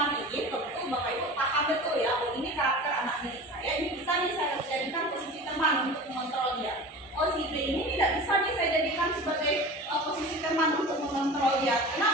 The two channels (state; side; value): normal; both; correlation 0.35